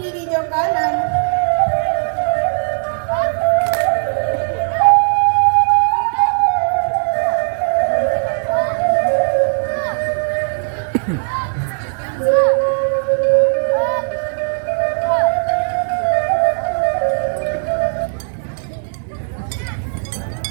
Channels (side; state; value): left; silent; digital silence